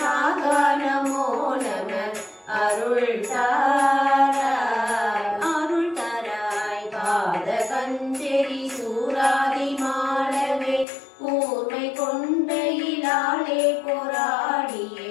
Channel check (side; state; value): right; drops out; at 10.9 s